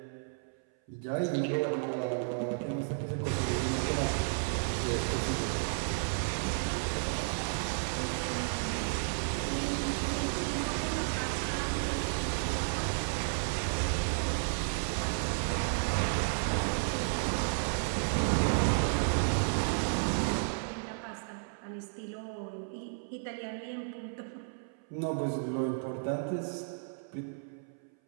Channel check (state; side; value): silent; left; 56 dB below the other